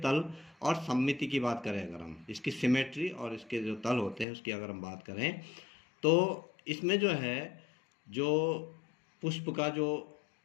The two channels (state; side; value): drops out; right; at 4.2 s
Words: और सममिति की बात करें, अगर हम इसकी सिमेट्री और इसके जो तल होते हैं उसकी अगर हम बात करें, तो इसमें जो है, जो पुष्प का जो